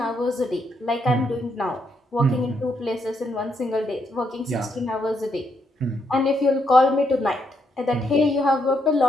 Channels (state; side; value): normal; both; correlation 0.77